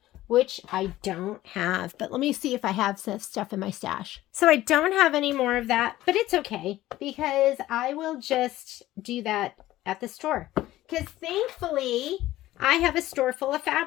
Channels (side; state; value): right; quieter; 15.4 dB